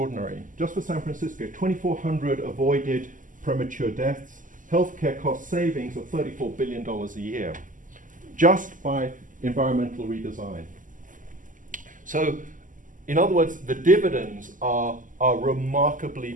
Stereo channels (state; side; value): late; left; 0.38 ms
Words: Just for San Francisco, 2,400 avoided premature deaths, healthcare cost savings of $34 billion a year, just by environmental redesign. So, in other words, the dividends are remarkably